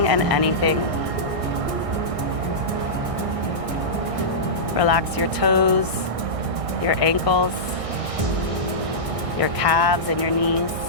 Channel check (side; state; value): left; late; 1.6 ms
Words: and anything. Relax your toes, your ankles, your calves and your knees.